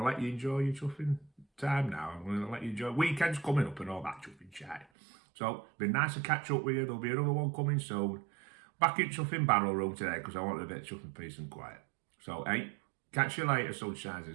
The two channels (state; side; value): drops out; left; at 4.9 s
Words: to let you enjoy your chuffing time now. I'm going to let you enjoy weekends coming up and all that chuffing chat. So, been nice to catch up with you. There'll be another one coming soon. Back in chuffing barrel room today because I wanted a bit of chuffing peace and quiet. So, hey, catch you later, sunshines